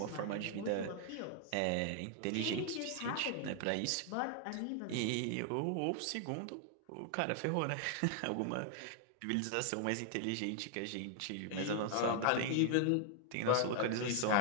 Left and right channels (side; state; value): both; different; correlation 0.00